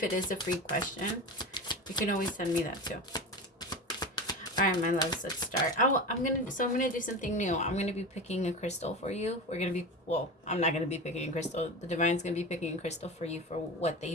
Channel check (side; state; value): both; normal; correlation 0.27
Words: it is a free question, you can always send me that too. All right, my loves, let's start. I'm gonna do something new. I'm gonna be picking a crystal for you. I'm not gonna be picking a crystal. The divine's gonna be picking a crystal for you for what